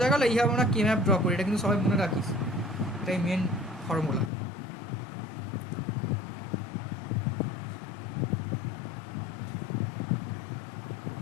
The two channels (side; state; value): right; drops out; at 4.3 s